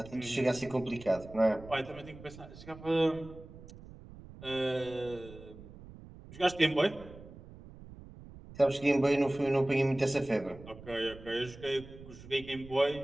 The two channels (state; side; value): noise; right; rumble, 17 dB below the sound